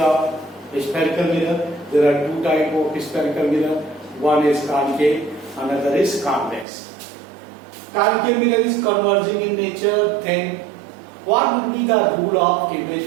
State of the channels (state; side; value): drops out; left; at 6.7 s